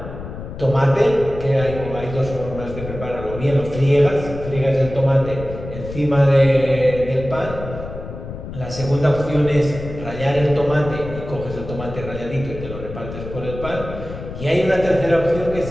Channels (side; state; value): left; noise; rumble, 10 dB below the sound